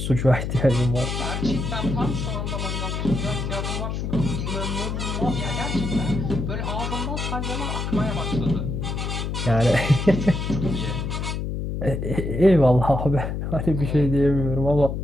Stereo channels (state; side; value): noise; left; hum, 3 dB below the sound